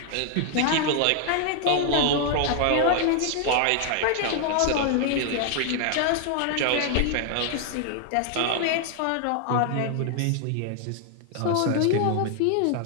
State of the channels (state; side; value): different; both; correlation 0.00